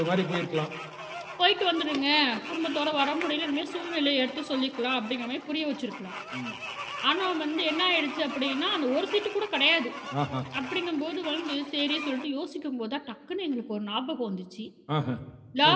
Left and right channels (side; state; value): both; identical; correlation 1.00